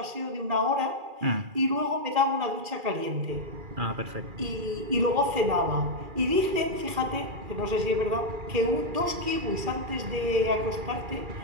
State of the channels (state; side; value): late; left; 2.4 ms